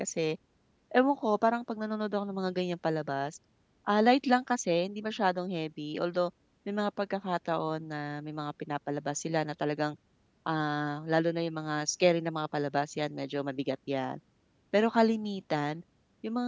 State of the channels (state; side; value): identical; both; correlation 1.00